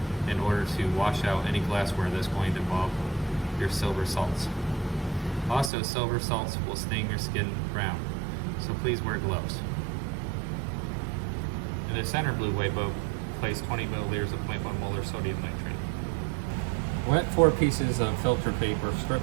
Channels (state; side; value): drops out; left; at 5.7 s